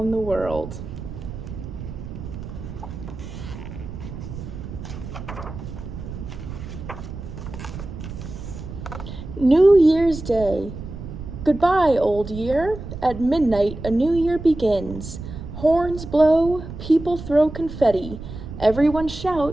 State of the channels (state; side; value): noise; right; rumble, 10 dB below the sound